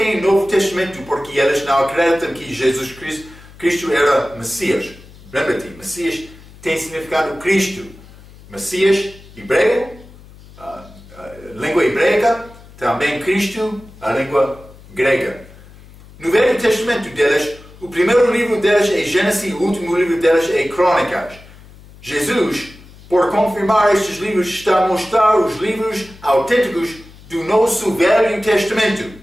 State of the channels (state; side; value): noise; left; hum, 21 dB below the sound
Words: Novo Testamento porque eles não acreditam que Jesus Cristo era Messias. Lembra-te, Messias tem significado Cristo. Messias, hebreu, língua hebraica, também Cristo, a língua grega. No Velho Testamento deles, o primeiro livro deles é Gênesis, o último livro deles é Crônicas. Jesus, por confirmar estes livros, está a mostrar os livros autênticos do nosso Velho Testamento,